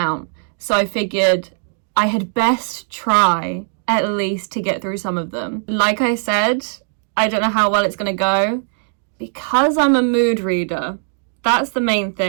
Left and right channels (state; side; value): silent; left; digital silence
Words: So I figured I had best try at least to get through some of them. Like I said, I don't know how well it's gonna go because I'm a mood reader. That's the main